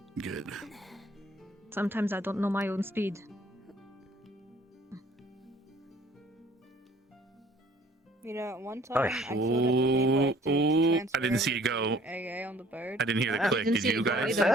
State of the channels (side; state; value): both; normal; correlation 0.56